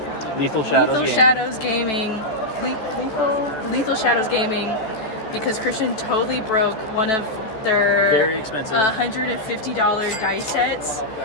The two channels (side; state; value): right; late; 14 ms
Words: Lethal Lethal Shadows Gaming, because Christian totally broke one of their very expensive $150 dice sets,